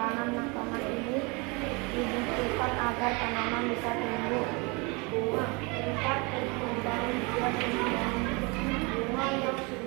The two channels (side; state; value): left; quieter; 29.0 dB